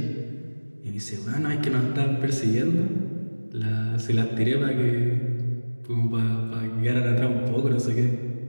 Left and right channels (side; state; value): both; inverted; correlation -1.00